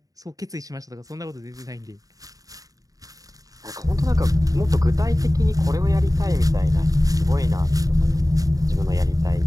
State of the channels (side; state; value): left; late; 0.17 ms